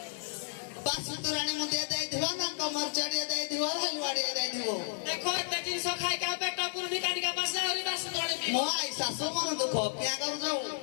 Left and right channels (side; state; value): right; silent; digital silence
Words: बस तुरणे मन देई थिबा ना कमर चढ़िए देई थिबा हलवाड़ी देई थिबो देखो एते दिन सो खाए का पेट पुरनी कानी का बस और बस तुरणे मो आई सासु मन दुख क्या करू जाऊ